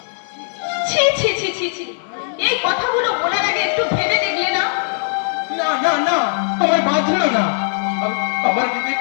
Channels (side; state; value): right; silent; 67 dB below the other